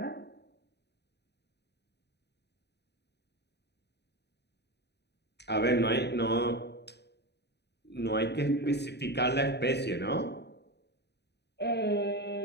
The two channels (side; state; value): right; late; 0.49 ms